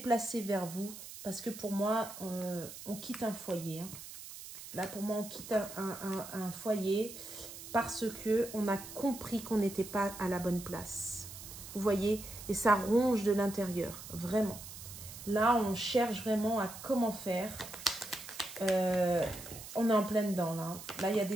vers vous, parce que pour moi, on quitte un foyer. Hein. Là, pour moi, on quitte un foyer parce qu'on a compris qu'on n'était pas à la bonne place. Vous voyez? Et ça ronge de l'intérieur, vraiment. Là, on cherche vraiment à comment faire. On est en plein dedans, là. Là, il y a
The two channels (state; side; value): noise; right; hiss, 13 dB below the sound